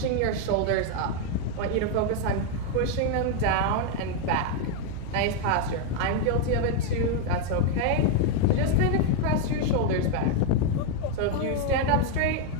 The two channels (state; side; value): different; both; correlation 0.01